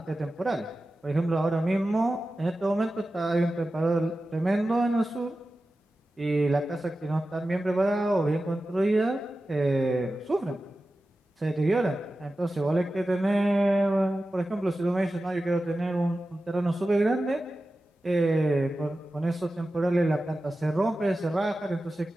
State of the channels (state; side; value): normal; both; correlation 0.94